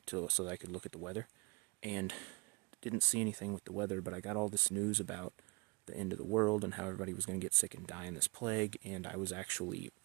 so that I could look at the weather, and didn't see anything with the weather, but I got all this news about the end of the world and how everybody was going to get sick and die in this plague, and I was actually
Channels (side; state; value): left; quieter; 29.9 dB